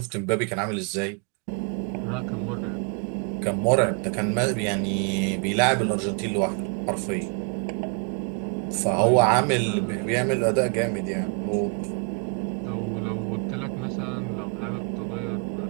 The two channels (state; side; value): quieter; left; 36.6 dB